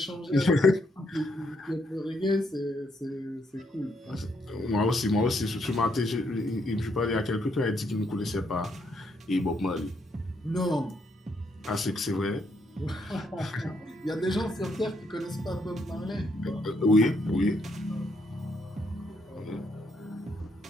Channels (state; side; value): normal; both; correlation 0.75